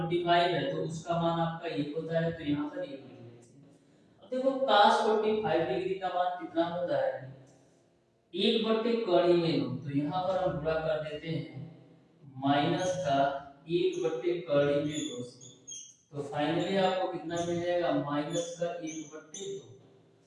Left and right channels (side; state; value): both; identical; correlation 1.00